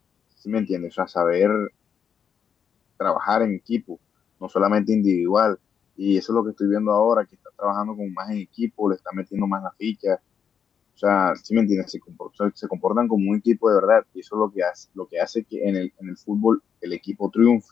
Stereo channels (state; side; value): quieter; right; 7.5 dB